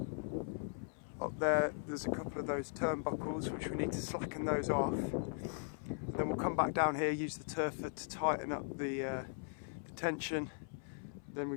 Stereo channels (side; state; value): right; silent; 52 dB below the other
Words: up there's a couple of those turnbuckles which we need to slacken those off, and then we'll come back down here, use the turfer to tighten up the tension, then we